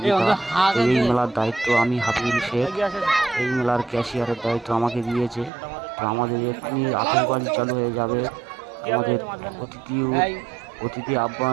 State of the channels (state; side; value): drops out; left; at 5.5 s